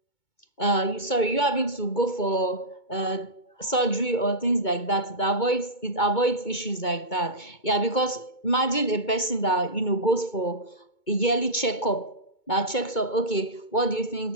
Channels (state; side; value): late; right; 2.2 ms